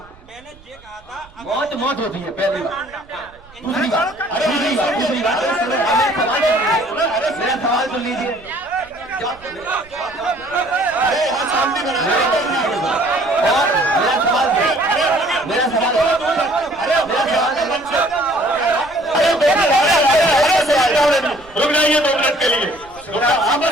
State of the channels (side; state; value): right; noise; rumble, 25 dB below the sound